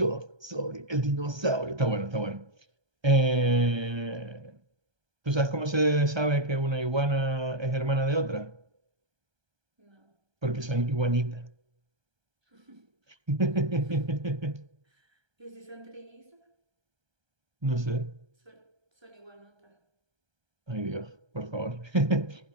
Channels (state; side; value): late; left; 1.3 ms